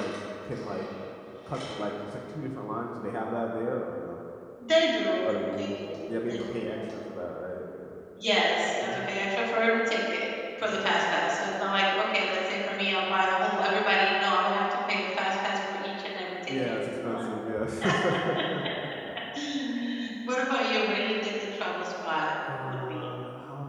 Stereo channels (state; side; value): identical; both; correlation 1.00